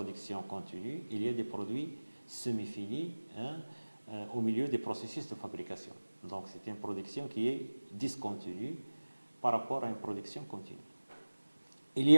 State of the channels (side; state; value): both; inverted; correlation -1.00